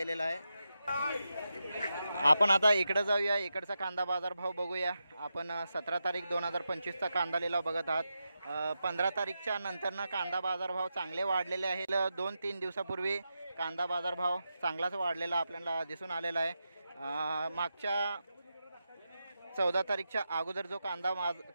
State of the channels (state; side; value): inverted; both; correlation -0.88